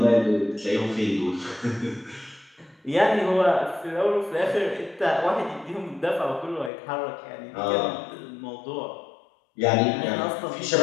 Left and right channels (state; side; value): drops out; right; at 6.7 s